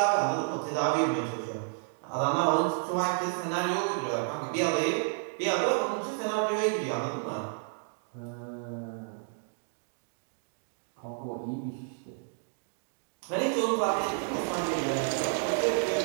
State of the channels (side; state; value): left; silent; 57 dB below the other